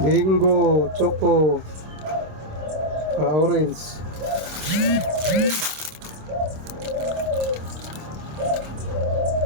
choco ka orange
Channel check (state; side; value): late; left; 26 ms